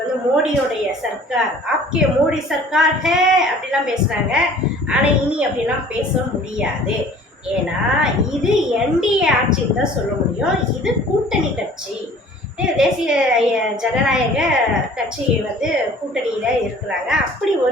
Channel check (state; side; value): normal; both; correlation 0.49